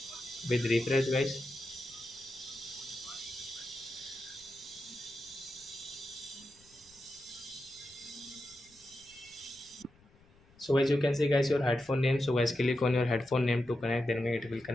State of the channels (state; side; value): noise; left; rumble, 29 dB below the sound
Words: with refresh guys. So as you can see guys your headphone name, so guys click on your headphone name to connect, then it will